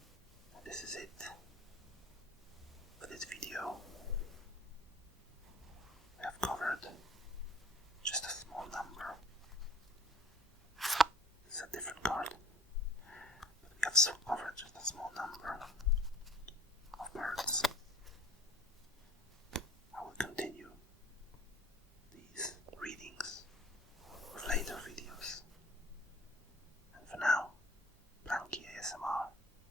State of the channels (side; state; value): both; normal; correlation 0.51